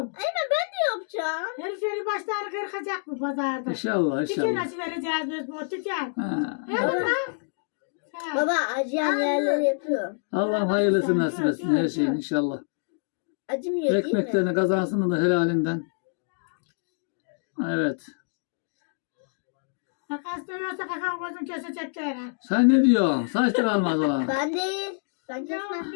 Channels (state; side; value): silent; right; digital silence